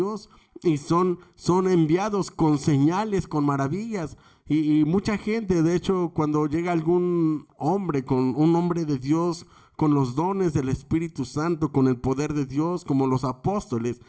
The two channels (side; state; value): both; identical; correlation 1.00